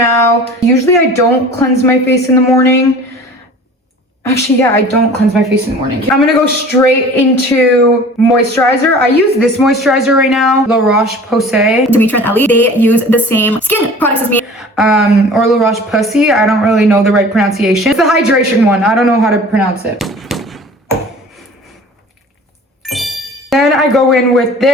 Usually I don't cleanse my face in the morning. Actually, yeah, I don't cleanse my face in the morning. I'm gonna go straight into moisturizer. I use this moisturizer right now, La Roche-Posay. Demitra and Ellie, they use the same skin products as me. Or La Roche-Posay. I don't really know the right pronunciation. It's the hydration one. I don't know how to pronounce it. Then I go in with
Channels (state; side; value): normal; both; correlation 0.44